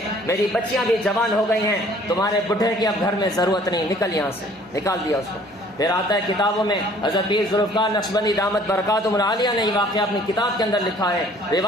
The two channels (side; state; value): both; normal; correlation 0.56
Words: میری بچیاں بھی جوان ہو گئی ہیں، تمہارے بڈھے کی اب گھر میں ضرورت نہیں، نکل یہاں سے، نکال دیا اس کو۔ پھر آتا ہے کتابوں میں، حضرت پیر ذوالفقار نقشبندی دامت برکاتہم العالیہ نے یہ واقعہ اپنی کتاب کے اندر لکھا ہے۔